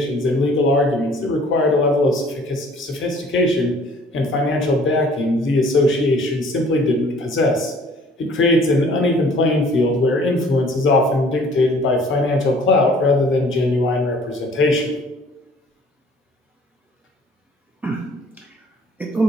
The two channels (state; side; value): normal; both; correlation 0.54